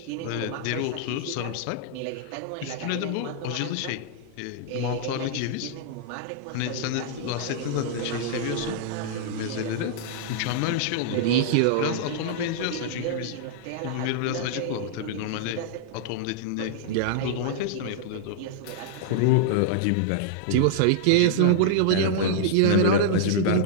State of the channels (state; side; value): different; both; correlation -0.01